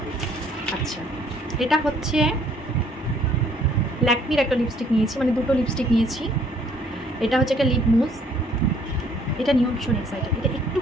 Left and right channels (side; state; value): both; normal; correlation 0.62